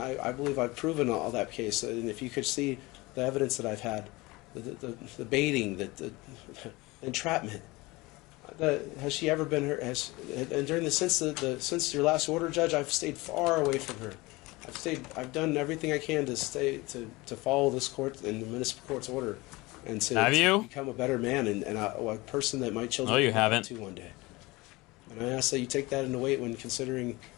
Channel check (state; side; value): quieter; right; 22.2 dB